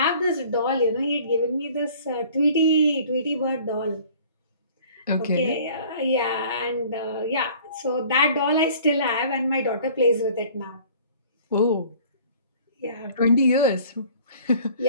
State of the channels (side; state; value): both; inverted; correlation -0.51